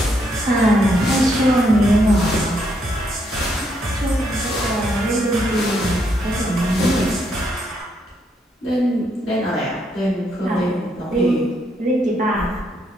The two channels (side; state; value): both; normal; correlation 0.76